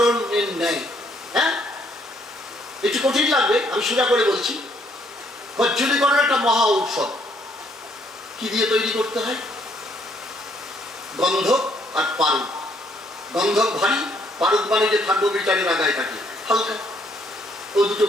ন্যায়। হ্যাঁ, একটু কঠিন লাগবে, আমি সোজা করে বলছি। কজ্জলীকরণ একটা মহা ঔষধ। কি দিয়ে তৈরি করতে হয়? গন্ধক আর পারদ। গন্ধক ভারী, পারদ মানে যে থাকবো বিচারের আগায় থাকে হালকা, ও দুটো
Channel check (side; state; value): both; normal; correlation 0.68